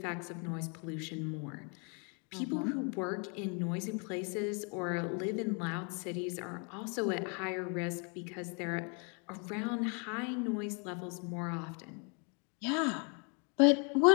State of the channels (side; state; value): right; quieter; 37.0 dB